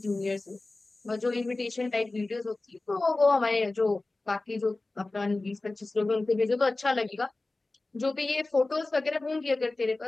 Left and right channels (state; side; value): quieter; right; 3.1 dB